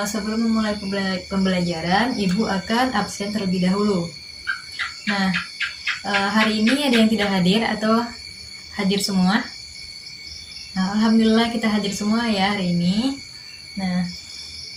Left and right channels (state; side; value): identical; both; correlation 1.00